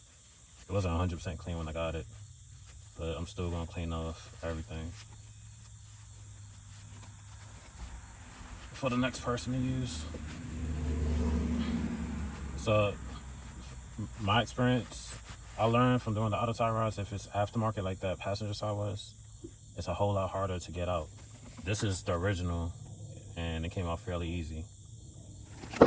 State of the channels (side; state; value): both; identical; correlation 1.00